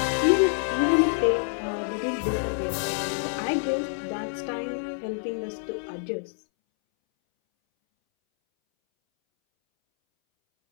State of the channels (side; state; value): right; silent; 60 dB below the other